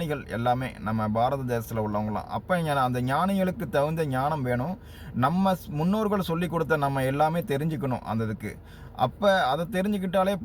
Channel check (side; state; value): both; identical; correlation 1.00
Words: எல்லாமே, நம்ம பாரத தேசத்தில் உள்ளவங்களாம். அப்போ அந்த ஞானிகளுக்கு தகுந்த ஞானம் வேணும். நம்ம முன்னோர்கள் சொல்லி கொடுத்த நம்ம எல்லாமே தெரிஞ்சுக்கணும் அந்த இதுக்கு. அப்போ அதை தெரிஞ்சுக்கிட்டாலே